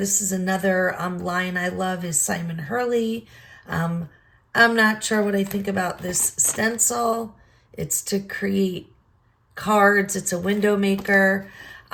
is another line I love, is Simon Hurley. I'm not sure what I think about this stencil. It's to create cards. It's a window maker.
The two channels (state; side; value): identical; both; correlation 1.00